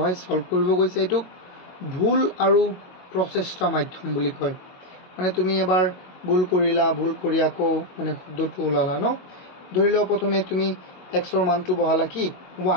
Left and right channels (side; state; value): right; late; 22 ms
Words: সলভ কৰিব কৈছে এটো ভুল আৰু প্ৰচেষ্টা মাধ্যম বুলি কয় মানে তুমি এবাৰ ভুল কৰিলা ভুল কৰি আকৌ মানে শুদ্ধটো ওলালা ন ধৰি লও প্ৰথমে তুমি x ৰ মানটো বহালা কি